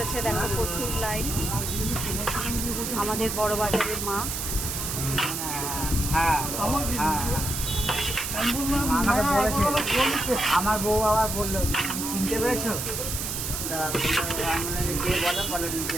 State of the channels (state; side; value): noise; right; hiss, 3 dB below the sound